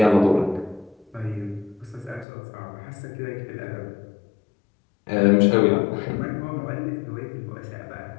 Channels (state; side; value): drops out; right; at 2.2 s